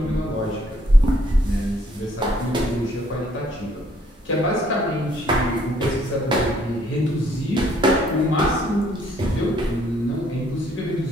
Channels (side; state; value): both; normal; correlation 0.65